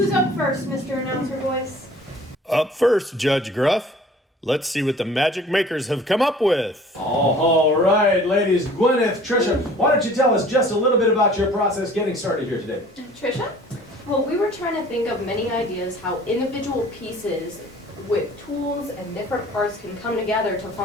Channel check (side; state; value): both; normal; correlation 0.49